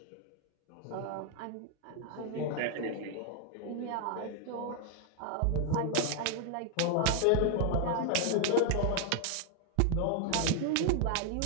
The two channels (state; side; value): different; both; correlation 0.00